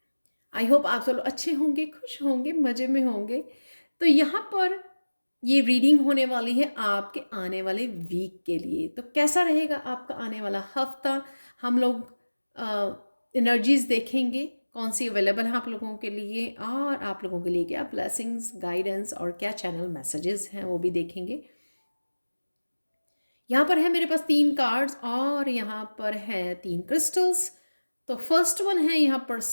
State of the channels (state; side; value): inverted; both; correlation -1.00